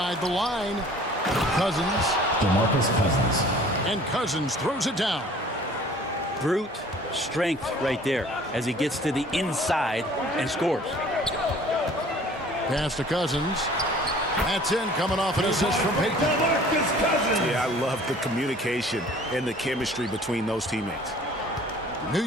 the line. Cousins. DeMarcus Cousins. And Cousins throws it down. Brute strength right there as he gets to the inside and scores. Pass to Cousins. That's in, coming off an assist from Payton. DeMarcus Cousins. Yeah, I love the communication and the chemistry between those teammates. New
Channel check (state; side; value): normal; both; correlation 0.50